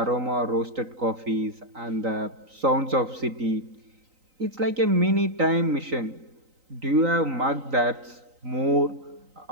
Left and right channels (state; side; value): late; left; 3.9 ms